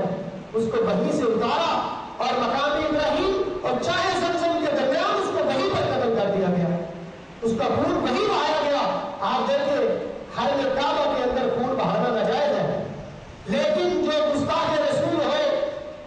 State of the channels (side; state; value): both; identical; correlation 1.00